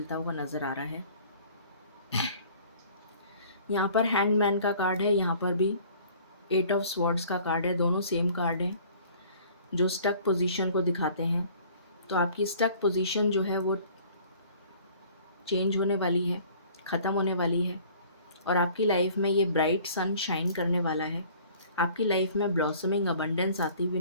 हुआ नज़र आ रहा है। यहाँ पर हैंगमैन का कार्ड है, यहाँ पर भी 8 ऑफ स्वॉर्ड्स का कार्ड है। दोनों सेम कार्ड हैं जो स्टक पोजीशन को दिखाते हैं। तो आपकी स्टक पोजीशन जो है वो चेंज होने वाली है, ख़त्म होने वाली है, और आपकी लाइफ में ये ब्राइट सन शाइन करने वाला है। आपकी लाइफ में ब्लॉसमिंग अबंडेंस आती हुई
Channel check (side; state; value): both; inverted; correlation -0.52